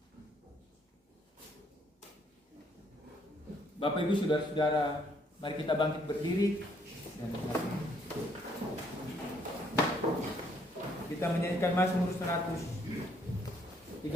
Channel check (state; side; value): normal; both; correlation 0.68